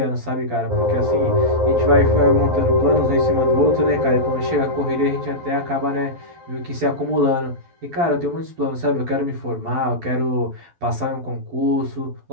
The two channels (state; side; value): late; left; 12 ms